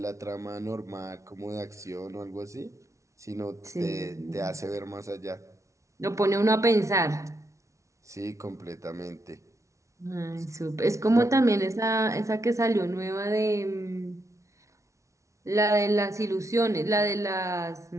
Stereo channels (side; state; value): left; late; 0.14 ms